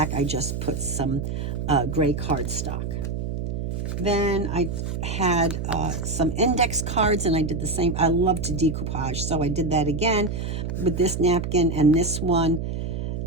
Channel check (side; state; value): right; noise; hum, 3 dB below the sound